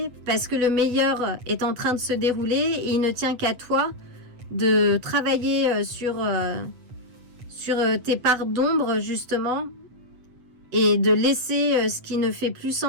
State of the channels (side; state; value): left; late; 8.3 ms